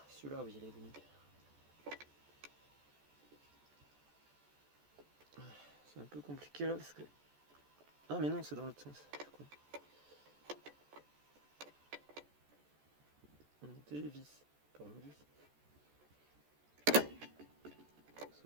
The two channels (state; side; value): late; left; 14 ms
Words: celui-là, oui, il est venu. C'est un peu compliqué là parce que. Ah, mais non, c'est dans l'autre sens. On dévisse. Pas on visse.